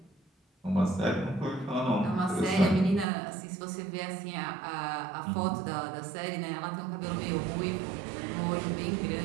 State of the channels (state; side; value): drops out; left; at 3.1 s